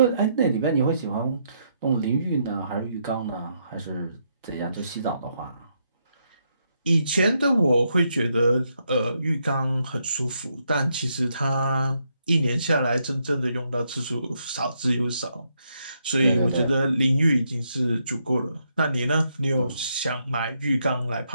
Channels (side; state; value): both; inverted; correlation -0.78